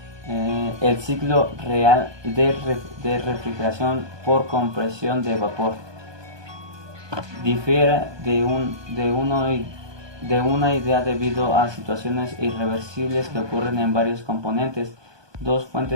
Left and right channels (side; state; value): left; late; 1.2 ms